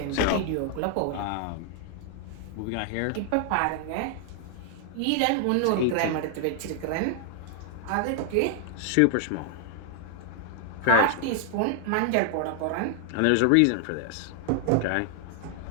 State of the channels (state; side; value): different; both; correlation 0.00